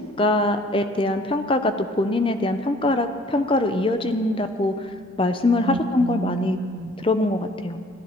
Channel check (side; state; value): both; normal; correlation 0.55